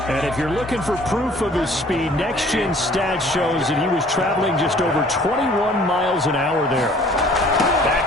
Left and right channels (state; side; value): normal; both; correlation 0.54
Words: And if you're looking for proof of his speed, Next Gen Stats shows that he was traveling just over 21 miles an hour there.